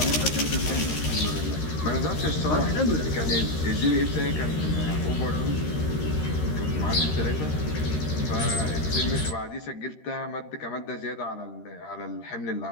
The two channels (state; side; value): late; right; 13 ms